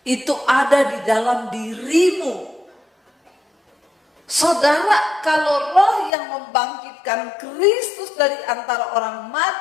itu ada di dalam dirimu. Saudara, kalau roh yang membangkitkan Kristus dari antara orang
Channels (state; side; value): drops out; right; at 6.1 s